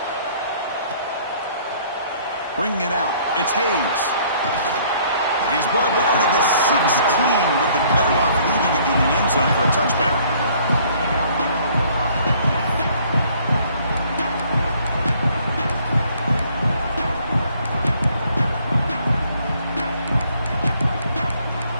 Bringing it out, it's Hayes. And he's brought down to the 16. Would have been better off leaving it in the end zone for a touchback.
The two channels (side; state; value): both; inverted; correlation -0.60